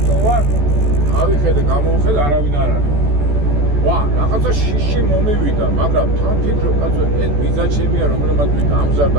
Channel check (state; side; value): late; left; 14 ms